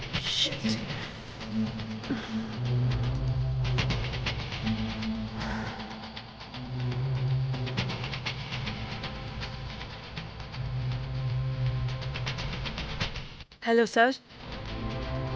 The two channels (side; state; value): both; identical; correlation 1.00